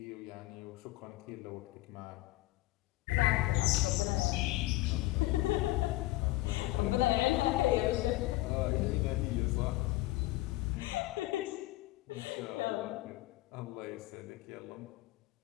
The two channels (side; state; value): right; quieter; 18.6 dB